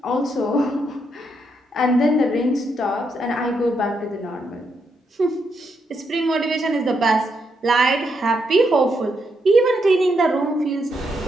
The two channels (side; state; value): both; normal; correlation 0.79